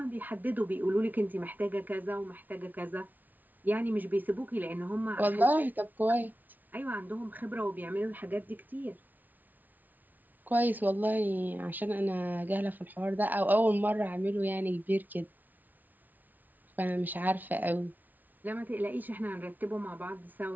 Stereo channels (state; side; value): late; left; 0.082 ms